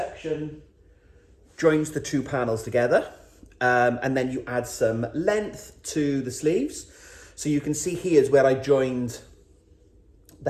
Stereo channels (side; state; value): both; identical; correlation 1.00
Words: joins the 2 panels together. And then you add some length to the sleeves. So you can see here's where I joined the